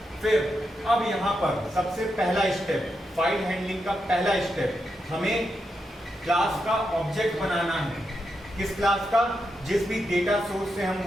फिर अब यहाँ पर सबसे पहला स्टेप, फाइल हैंडलिंग का पहला स्टेप, हमें क्लास का ऑब्जेक्ट बनाना है। किस क्लास का? जिस भी डेटा सोर्स से हम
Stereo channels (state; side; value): normal; both; correlation 0.85